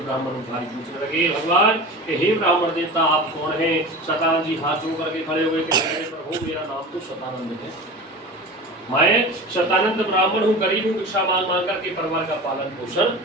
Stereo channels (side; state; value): both; normal; correlation 0.32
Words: भारी पूछने लगे भगवान कि हे ब्राह्मण देवता आप कौन हैं? शतानंद जी हाथ जोड़ करके खड़े हुए कि प्रभु मेरा नाम तो शतानंद है, मैं शतानंद ब्राह्मण हूँ, गरीब हूँ, भिक्षा मांग मांग करके परिवार का पालन पोषण।